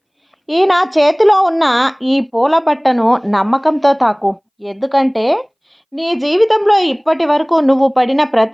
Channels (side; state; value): both; identical; correlation 1.00